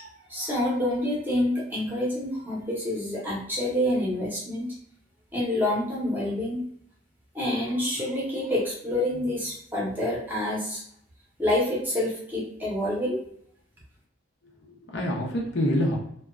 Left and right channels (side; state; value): both; normal; correlation 0.53